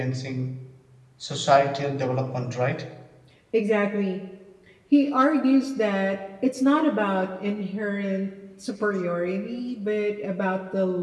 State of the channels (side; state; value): both; identical; correlation 1.00